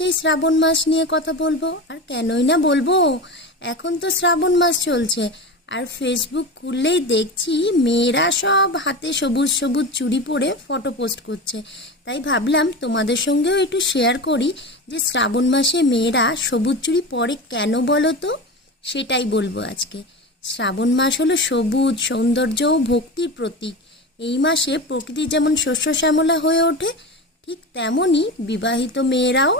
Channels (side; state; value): both; normal; correlation 0.26